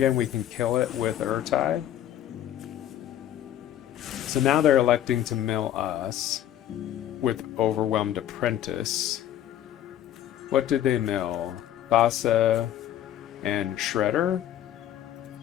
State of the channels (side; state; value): right; quieter; 11.5 dB